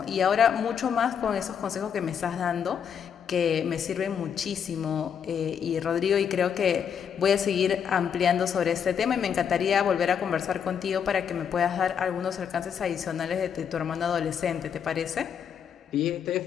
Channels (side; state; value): right; quieter; 7.7 dB